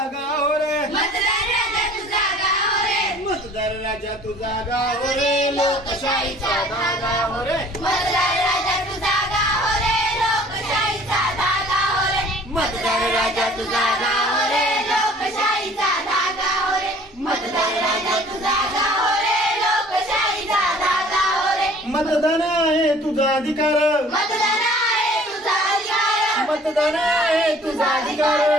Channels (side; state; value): both; normal; correlation 0.52